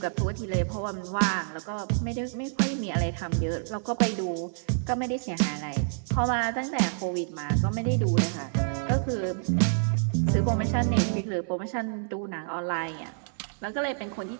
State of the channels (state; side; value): silent; left; 59 dB below the other